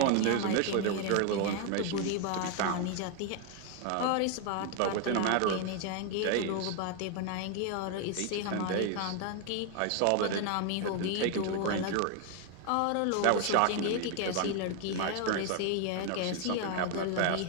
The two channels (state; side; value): different; both; correlation 0.01